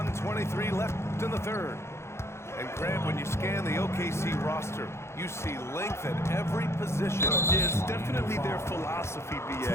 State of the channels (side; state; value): right; late; 0.13 ms